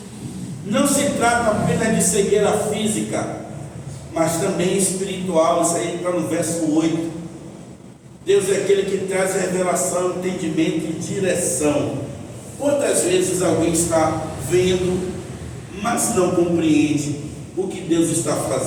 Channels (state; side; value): identical; both; correlation 1.00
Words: Não se trata apenas de cegueira física, mas também espiritual. Isso aí está no verso 8. Deus é aquele que traz revelação, entendimento e direção. Quantas vezes alguém está vendo, mas não compreende o que Deus está